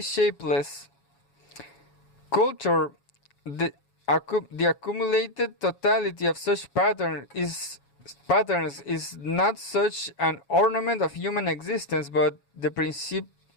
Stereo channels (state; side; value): late; right; 7.2 ms